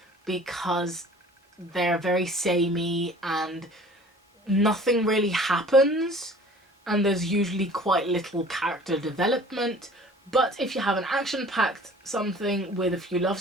because they're very samey and nothing really happens and there's usually quite little character development. But if you have an action-packed something with a few love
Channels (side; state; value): both; normal; correlation 0.48